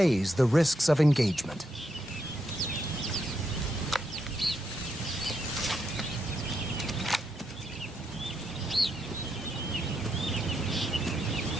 the risks of engagement.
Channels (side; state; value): both; normal; correlation 0.81